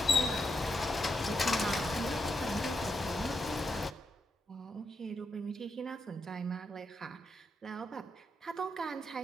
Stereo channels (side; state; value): both; normal; correlation 0.82